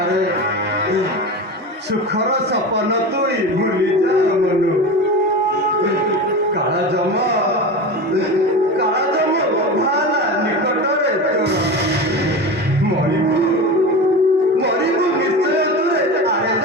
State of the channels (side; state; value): both; normal; correlation 0.26